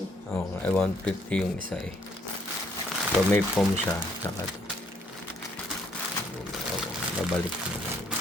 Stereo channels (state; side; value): normal; both; correlation 0.68